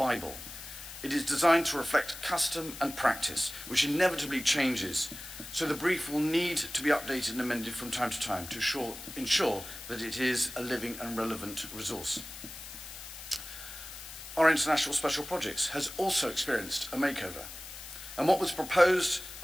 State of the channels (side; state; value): left; noise; hiss, 12 dB below the sound